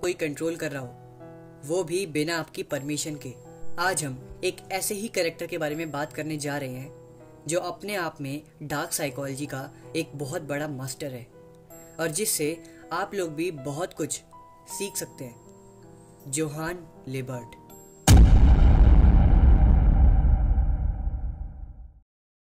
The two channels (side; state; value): both; identical; correlation 1.00